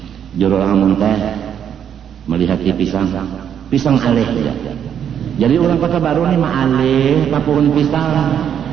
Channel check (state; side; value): quieter; left; 8.8 dB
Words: Juru amun teh melihat di pisang alih ya. Jadi orang Kota Baru nih mah alih tapungan pisang.